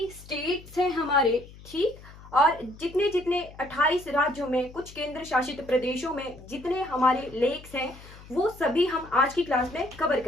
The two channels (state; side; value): noise; left; hum, 19 dB below the sound